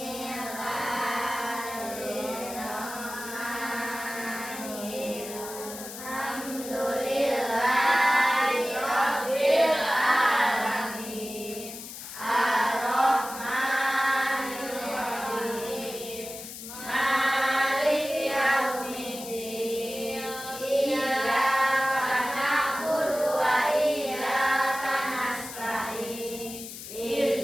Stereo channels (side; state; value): left; noise; hiss, 11 dB below the sound